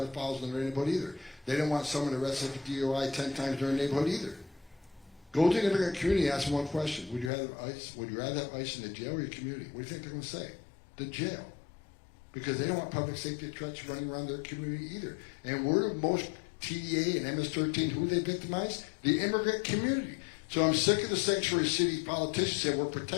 in their neighborhood either. They don't want someone arrested for DUI 10 times in their neighborhood either. Go to the immigrant community and ask them one question. Would you rather have ICE in the jail or your community? What do you think they're going to say? The jail. Because they don't want public safety threats running around their community either. And we're the most TDA and MS-13, who they victimize? The immigrant community. So I'm sick of the sanctuary city politicians saying we're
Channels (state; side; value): drops out; right; at 7.3 s